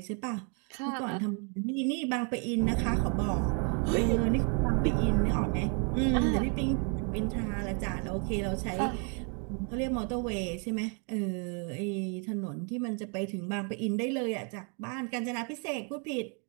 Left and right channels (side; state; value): left; quieter; 38.0 dB